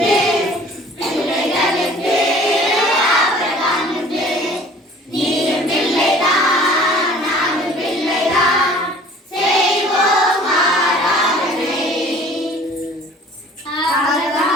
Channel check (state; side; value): normal; both; correlation 0.49